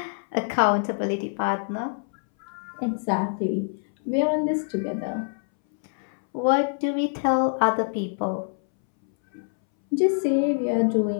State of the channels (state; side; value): silent; right; 61 dB below the other